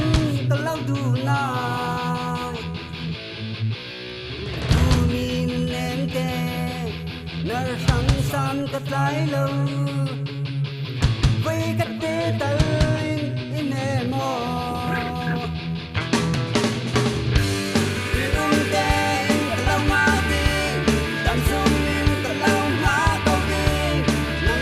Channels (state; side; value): identical; both; correlation 1.00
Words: ta lau đủ nai tu min em ke nar sang san cách lái lâu với cách đến tới in em mò